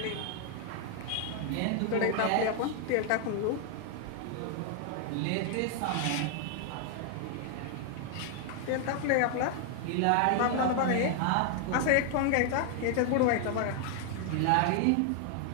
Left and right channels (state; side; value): different; both; correlation 0.00